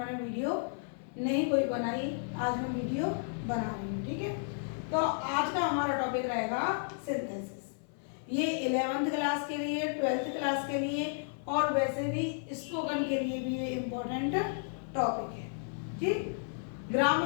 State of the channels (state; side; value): silent; right; 56 dB below the other